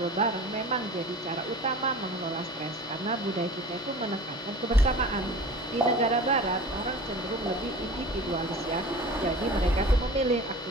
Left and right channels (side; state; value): both; normal; correlation 0.39